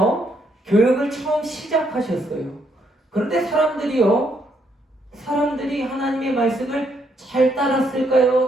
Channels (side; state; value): both; normal; correlation 0.74